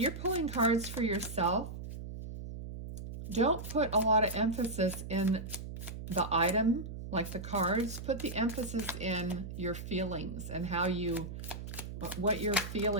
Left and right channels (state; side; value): noise; right; hum, 9 dB below the sound